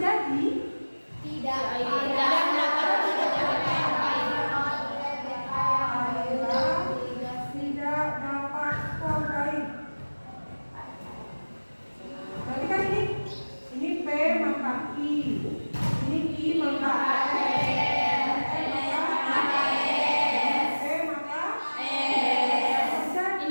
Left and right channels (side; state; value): both; inverted; correlation -1.00